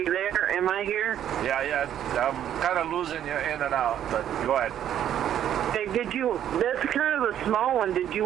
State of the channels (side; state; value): left; quieter; 10.5 dB